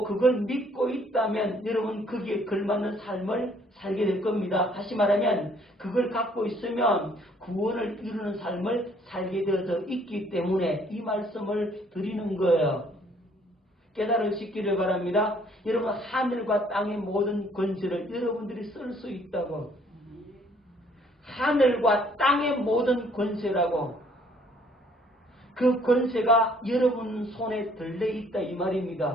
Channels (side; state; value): both; normal; correlation 0.62